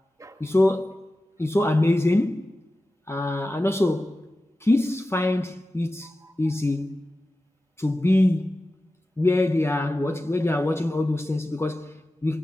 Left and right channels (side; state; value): both; normal; correlation 0.94